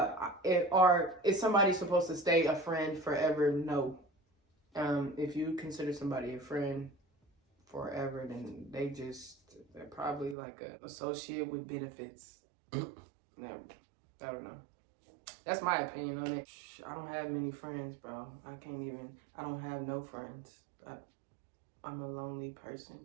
is somebody supposed to stay a friend forever? No. If you consider somebody a friend forever, then they're probably like an associate with benefits. No, I don't know. That's my opinion on it. I don't have many friends, bro. I don't have no friends. I'm a lonely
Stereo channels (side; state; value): left; drops out; at 10.4 s